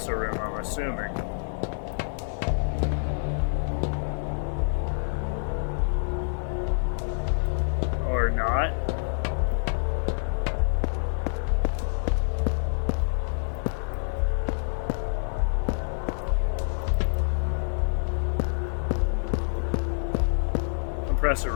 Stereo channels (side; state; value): right; silent; digital silence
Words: room, I'm assuming. Or not. Compressor